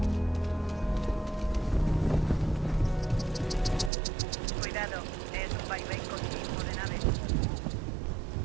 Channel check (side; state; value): left; drops out; at 3.9 s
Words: Cuidado, es un vaivén continuo de naves.